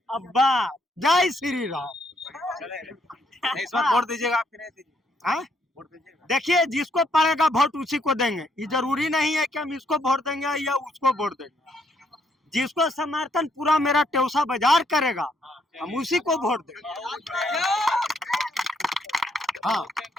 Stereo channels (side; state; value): both; normal; correlation 0.72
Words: अब्बा जय श्री राम। इस बार वोट दीजिएगा आपकी नहीं दीजिएगा? वोट दीजिएगा। देखिए जिसको पड़ेगा वोट उसी को देंगे, ये जरूरी नहीं है कि हम इसको वोट देंगे या उसको वोट देंगे। जिसको समर्थन पूरा मेरा टेउसा बाजार करेगा हम उसी को वोट देंगे। हाँ